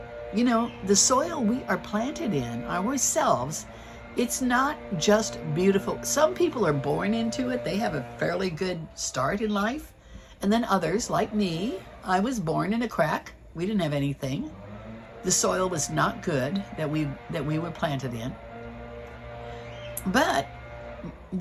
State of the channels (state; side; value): identical; both; correlation 1.00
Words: You know, the soil we are planted in, ourselves, it's not just beautiful. Some people are born into it. They have a fairly good start in life. And then others, like me, I was born in a crack. We didn't have anything. The soil was not good that we were planted in. But